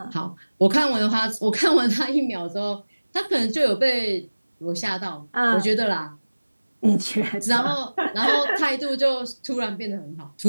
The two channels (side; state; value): both; inverted; correlation -1.00